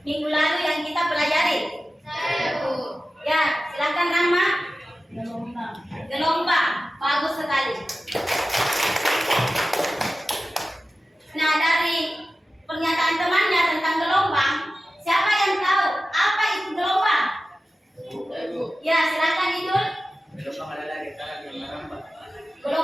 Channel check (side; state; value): both; normal; correlation 0.94